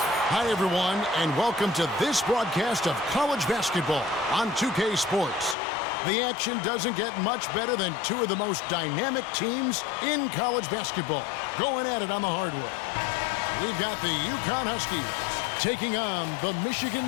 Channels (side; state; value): right; drops out; at 5.6 s